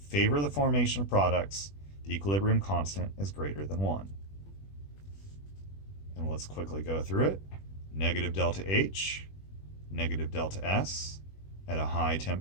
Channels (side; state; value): right; late; 21 ms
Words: the formation of products. The equilibrium constant is greater than 1. And let's quickly go through it. Negative delta H, negative delta S at a high